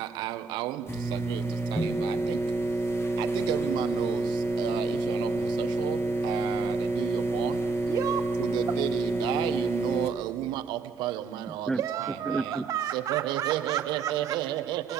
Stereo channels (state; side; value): quieter; left; 4.6 dB